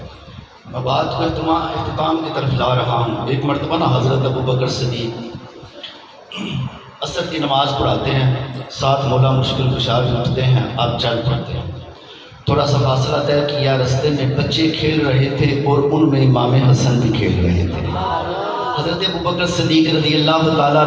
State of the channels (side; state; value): both; identical; correlation 1.00